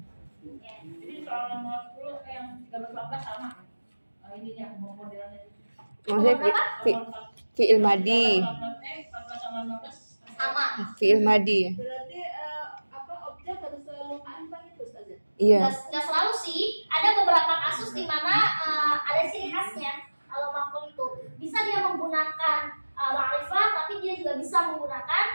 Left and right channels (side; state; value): both; inverted; correlation -1.00